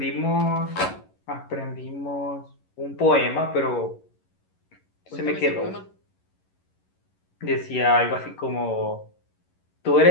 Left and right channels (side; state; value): right; late; 11 ms